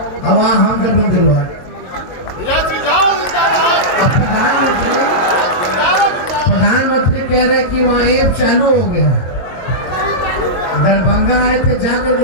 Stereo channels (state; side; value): late; right; 22 ms